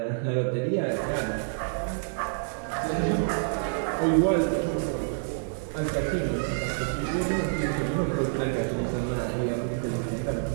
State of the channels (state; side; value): silent; left; digital silence